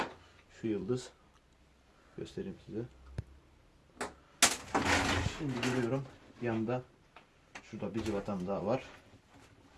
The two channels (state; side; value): identical; both; correlation 1.00